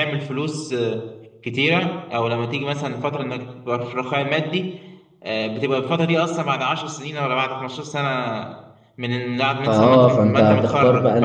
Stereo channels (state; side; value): identical; both; correlation 1.00